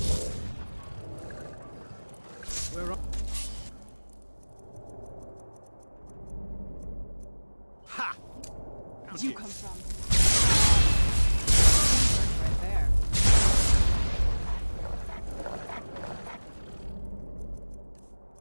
Where are... Ha! Where'd you come from? Right there.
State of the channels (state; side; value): inverted; both; correlation -1.00